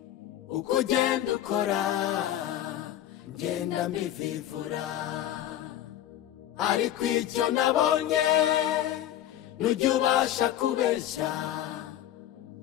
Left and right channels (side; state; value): right; quieter; 12.1 dB